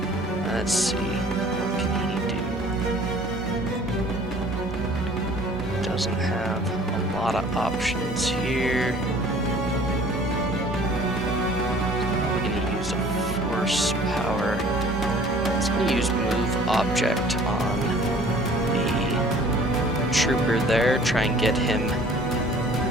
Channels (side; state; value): both; normal; correlation 0.51